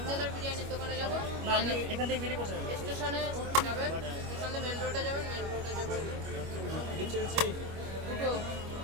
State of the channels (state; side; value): late; left; 25 ms